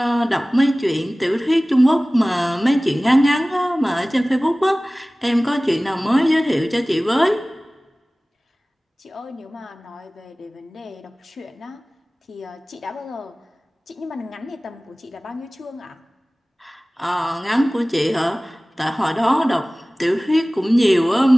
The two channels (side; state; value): both; normal; correlation 0.98